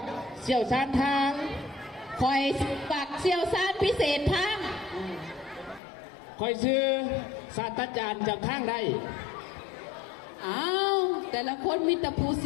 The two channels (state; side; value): drops out; right; at 5.8 s